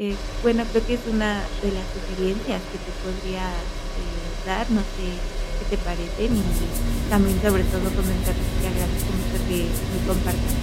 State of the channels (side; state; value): both; identical; correlation 1.00